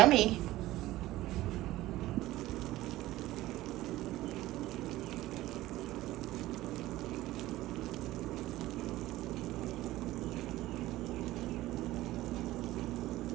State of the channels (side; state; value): left; quieter; 16.5 dB